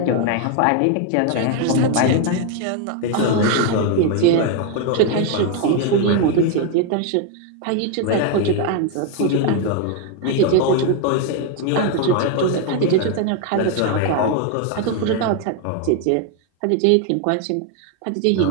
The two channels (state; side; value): different; both; correlation 0.01